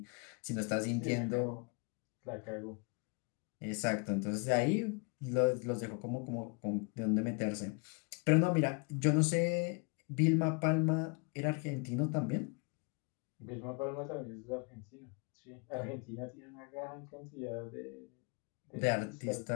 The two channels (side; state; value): right; quieter; 34.5 dB